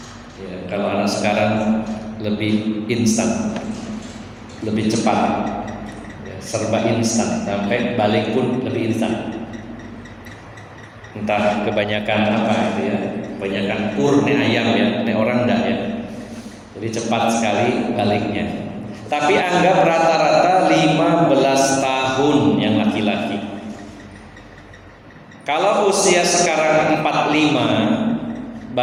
Ya, kalau anak sekarang lebih instan, lebih cepat, ya, serba instan, sampai balik pun lebih instan. Entah kebanyakan apa itu ya, kebanyakan ayam ya, orang enggak ya. Jadi cepat sekali baliknya. Tapi anggap rata-rata 15 tahun yang laki-laki. Kalau usia sekarang 45,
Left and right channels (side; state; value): both; identical; correlation 1.00